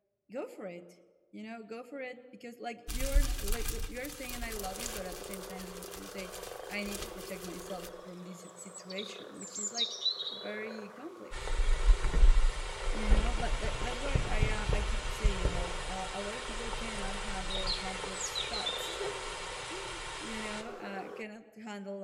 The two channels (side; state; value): both; identical; correlation 1.00